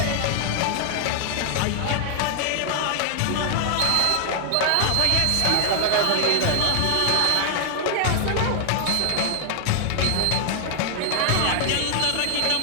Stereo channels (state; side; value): different; both; correlation 0.00